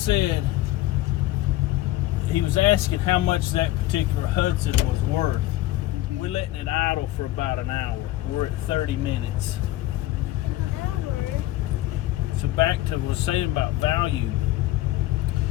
he was asking how much that particular Hudson was worth. We're letting it idle for about an hour. We're at 30 minutes. So back to what I was saying about value.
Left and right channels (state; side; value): quieter; right; 16.1 dB